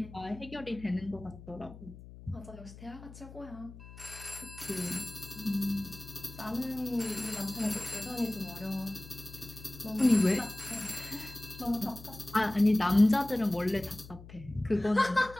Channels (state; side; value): noise; left; hum, 16 dB below the sound